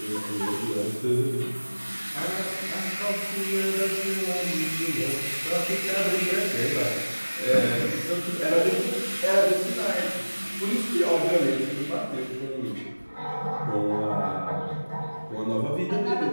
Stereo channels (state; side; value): inverted; both; correlation -1.00